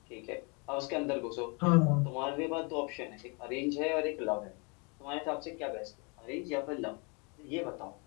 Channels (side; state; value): right; quieter; 32.6 dB